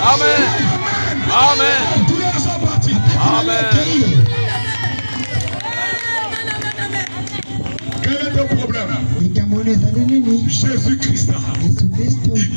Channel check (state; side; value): inverted; both; correlation -1.00